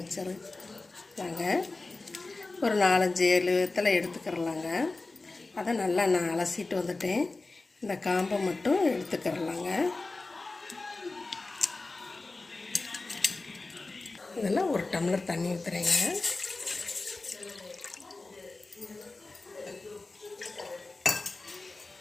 வச்சிருந்தாங்க. ஒரு 4-5-7 வெத்தலை எடுத்துக்கிறலாங்க. அதை நல்லா நான் அலசிட்டு வந்துட்டேன். இந்த காம்பை மட்டும் எடுத்துக்கிறலாங்க. இதெல்லாம் 1 டம்ளர் தண்ணி ஊற்றுறேங்க.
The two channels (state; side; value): quieter; right; 3.4 dB